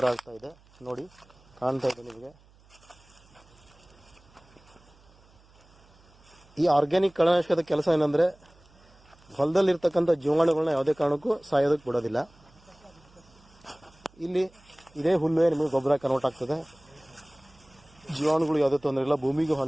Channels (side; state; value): right; noise; hum, 28 dB below the sound